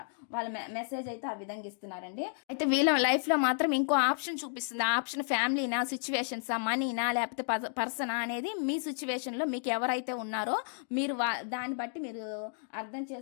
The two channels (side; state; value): right; silent; digital silence